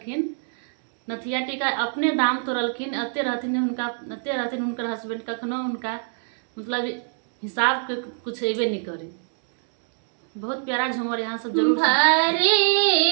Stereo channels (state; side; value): silent; left; 62 dB below the other